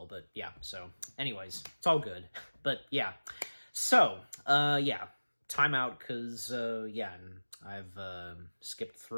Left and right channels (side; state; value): both; inverted; correlation -1.00